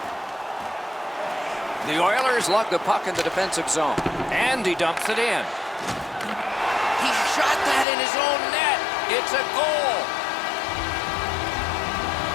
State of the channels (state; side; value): drops out; right; at 7.9 s